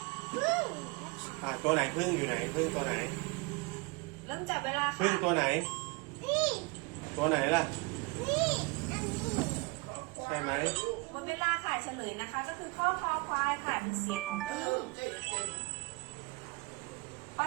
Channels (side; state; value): left; quieter; 27.6 dB